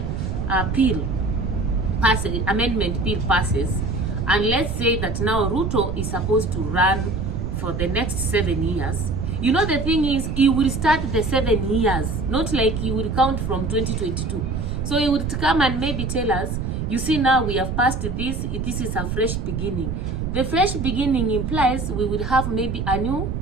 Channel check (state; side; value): noise; right; rumble, 3 dB below the sound